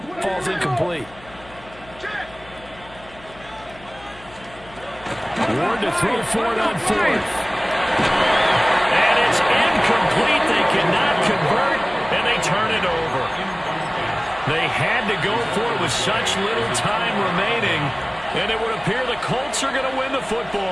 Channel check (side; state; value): left; noise; hum, 22 dB below the sound